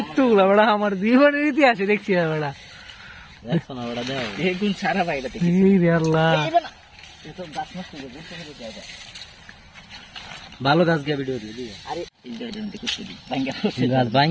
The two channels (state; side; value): identical; both; correlation 1.00